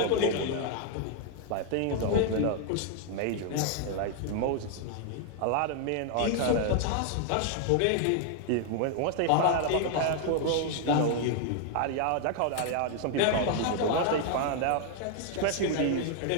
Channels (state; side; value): different; both; correlation 0.00